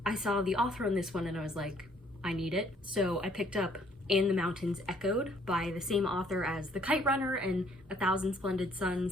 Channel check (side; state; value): both; normal; correlation 0.63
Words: I saw the author on this one and I was like, I need it. So I picked up And the Mountains Echoed by the same author as The Kite Runner and A Thousand Splendid